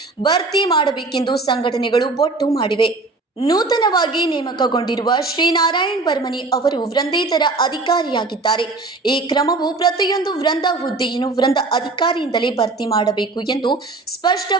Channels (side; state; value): left; quieter; 3.4 dB